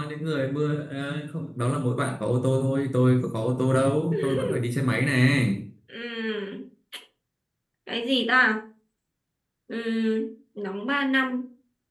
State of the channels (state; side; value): identical; both; correlation 1.00